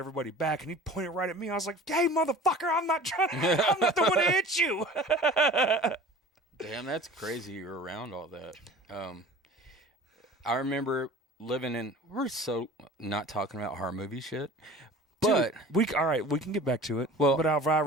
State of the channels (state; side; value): normal; both; correlation 0.42